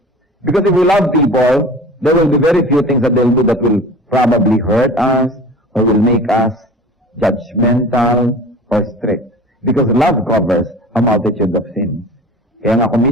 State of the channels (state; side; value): normal; both; correlation 0.39